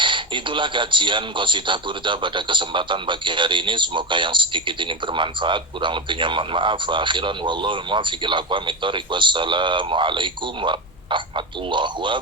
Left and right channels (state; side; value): normal; both; correlation 0.13